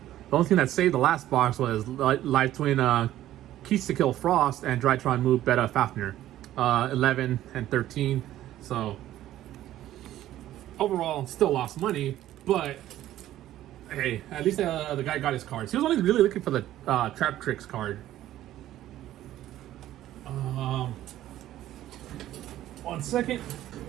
The only thing that saved the last box was Live Twin Keys to Kill Frost and Drytron Move Beta Fafnir. 11 and 13. So overall still lost money, but hey, at least the guy got his cards. He was only really looking for the Trap Tricks card. 1 second.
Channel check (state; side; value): quieter; left; 13.5 dB